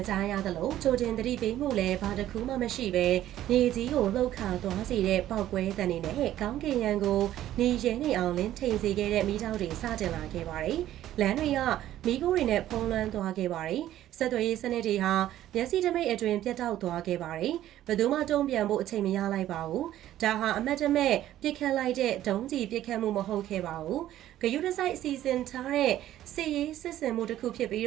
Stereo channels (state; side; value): quieter; left; 12.9 dB